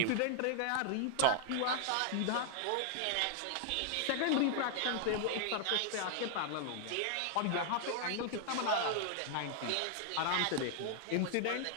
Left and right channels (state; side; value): different; both; correlation 0.00